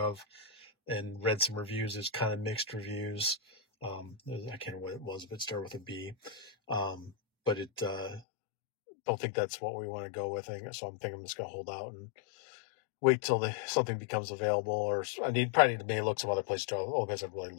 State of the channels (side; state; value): right; drops out; at 8.2 s